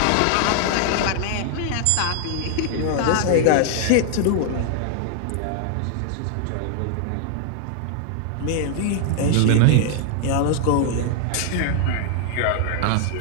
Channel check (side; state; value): both; different; correlation 0.00